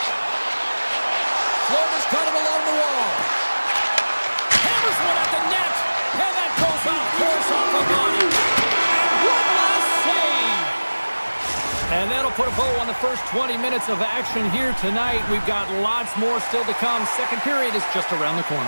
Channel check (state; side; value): inverted; both; correlation -1.00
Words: Florida's got it along the wall. Hammers one at the net. And that goes off course off the body. And one last save. And that'll put a bow on the first 20 minutes of action here tonight. We've got lots more still to come. Second period is just around the